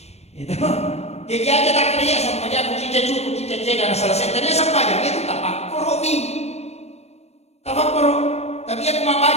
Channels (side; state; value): right; late; 0.31 ms